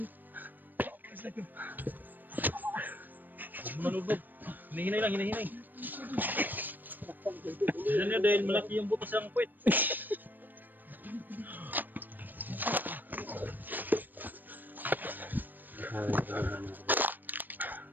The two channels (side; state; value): left; late; 0.090 ms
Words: Manubog. Hinahinay lang, hinahinay. Yan niya dahil malaki yung butas ng puwet.